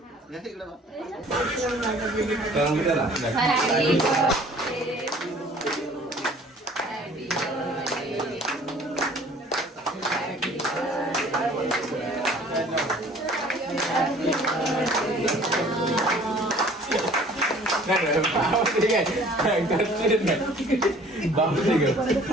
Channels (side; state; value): both; normal; correlation 0.52